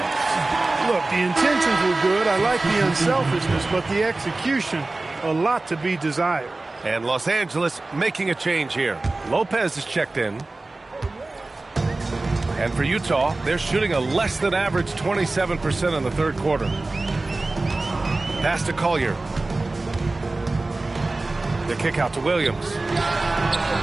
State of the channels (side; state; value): left; quieter; 3.1 dB